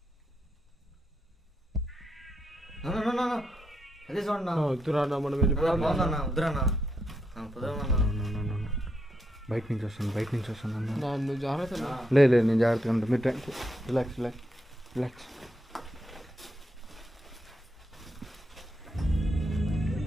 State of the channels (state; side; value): normal; both; correlation 0.81